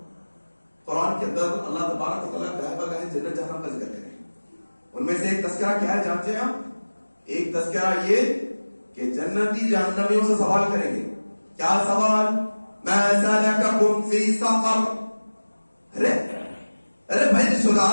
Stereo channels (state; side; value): inverted; both; correlation -1.00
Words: قرآن کے اندر اللہ تبارک و تعالیٰ گاہے بگاہے جنت جہنم کا ذکر کریں. ان میں سے ایک تذکرہ کیا ہے جانتے ہیں آپ؟ ایک تذکرہ یہ کہ جنتی جہنمیوں سے سوال کریں گے. کیا سوال؟ ما سلککم فی سقر. ارے بھائی رشتہ